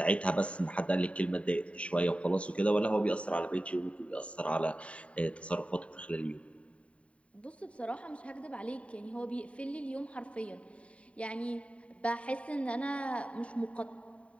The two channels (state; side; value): late; right; 0.064 ms